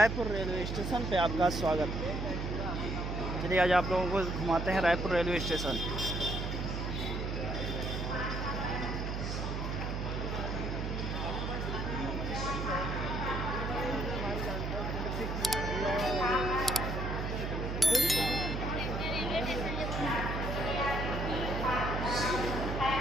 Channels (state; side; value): noise; right; hum, 3 dB below the sound